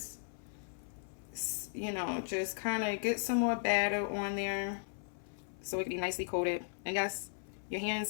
you know, just kind of get some more batter on there so it can be nicely coated. And yes, your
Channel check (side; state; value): right; silent; 53 dB below the other